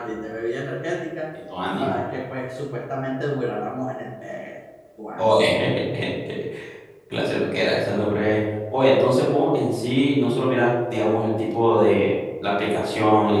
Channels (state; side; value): identical; both; correlation 1.00